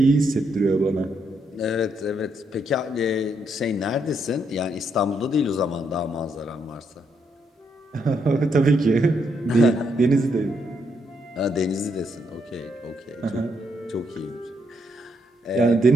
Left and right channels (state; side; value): normal; both; correlation 0.76